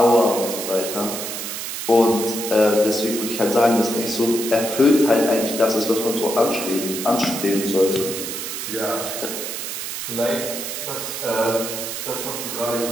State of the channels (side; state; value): right; noise; hiss, 5 dB below the sound